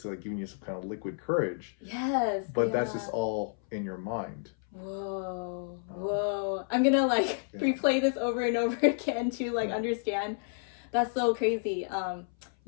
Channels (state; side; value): silent; right; 57 dB below the other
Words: like giving you some kind of liquid courage. Yes. But that's just all in your mind. Whoa. I'm gonna replay this over and over again to understand. That's so crazy. I